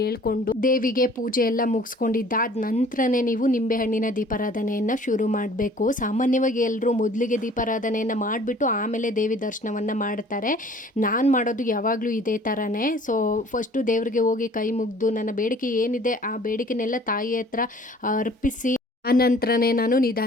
ದೇವಿಗೆ ಪೂಜೆ ಎಲ್ಲ ಮುಗಿಸ್ಕೊಂಡಿದ್ದಾದ ನಂತರನೇ ನೀವು ನಿಂಬೆಹಣ್ಣಿನ ದೀಪಾರಾಧನೆಯನ್ನು ಶುರು ಮಾಡಬೇಕು. ಸಾಮಾನ್ಯವಾಗಿ ಎಲ್ಲರೂ ಮೊದಲಿಗೆ ದೀಪಾರಾಧನೆಯನ್ನು ಮಾಡಿಬಿಟ್ಟು ಆಮೇಲೆ ದೇವಿ ದರ್ಶನವನ್ನು ಮಾಡ್ತಾರೆ. ನಾನು ಮಾಡೋದು ಯಾವಾಗಲೂ ಇದೇ ಥರನೇ. ಸೊ ಫಸ್ಟು ದೇವರಿಗೆ ಹೋಗಿ ಕೈ ಮುಗಿದು ನನ್ನ ಬೇಡಿಕೆ ಏನಿದೆ ಆ ಬೇಡಿಕೆನೆಲ್ಲ ತಾಯಿ ಹತ್ರ ಅರ್ಪಿಸಿ ಆನಂತರನೇ ನಾನು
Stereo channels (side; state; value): both; normal; correlation 0.52